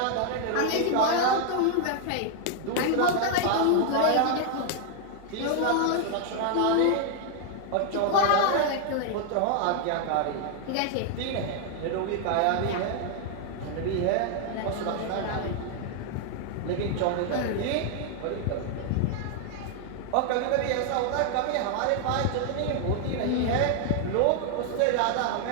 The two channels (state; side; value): different; both; correlation 0.00